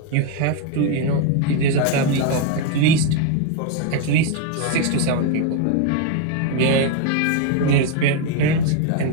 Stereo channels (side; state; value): both; different; correlation 0.01